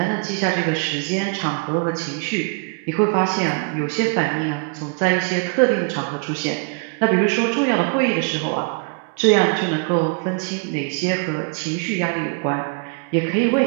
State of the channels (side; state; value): left; quieter; 39.0 dB